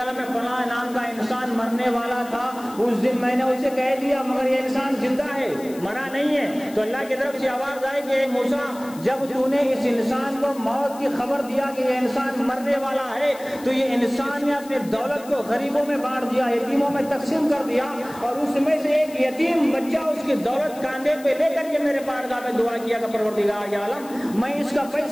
میں فلاں نام کا انسان مرنے والا تھا، اس دن میں نے اسے کہہ دیا مگر یہ انسان زندہ ہے، مرا نہیں ہے۔ تو اللہ کی طرف سے آواز آئی کہ موسیٰ جب تو نے اس انسان کو موت کی خبر دیا کہ یہ انسان مرنے والا ہے، تو یہ انسان نے اپنے دولت کو غریبوں میں بانٹ دیا، یتیموں میں تقسیم کر دیا، اور اس میں سے ایک یتیم بچہ اس کی دولت کاندھے پہ لے کر کے میرے بارگاہ میں دعا کیا کہ پروردگار عالم میں اس کا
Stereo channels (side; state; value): left; noise; hiss, 20 dB below the sound